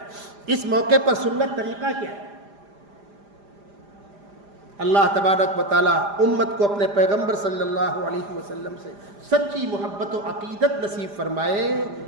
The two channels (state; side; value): late; left; 5.0 ms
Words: اس موقع پر سنت طریقہ کیا ہے۔ اللہ تبارک و تعالیٰ امت کو اپنے پیغمبر صلی اللہ علیہ وسلم سے سچی محبت و عقیدت نصیب فرمائے،